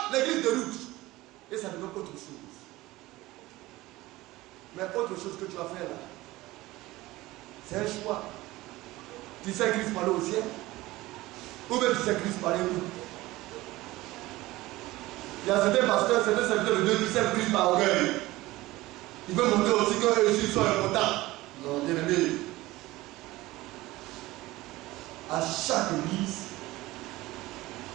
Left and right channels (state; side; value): quieter; left; 18.6 dB